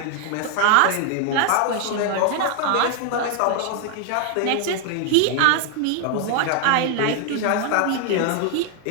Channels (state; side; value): different; both; correlation 0.00